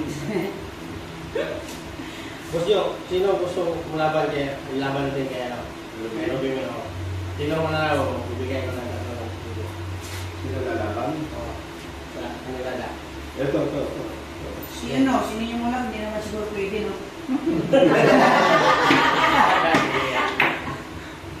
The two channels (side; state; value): both; identical; correlation 1.00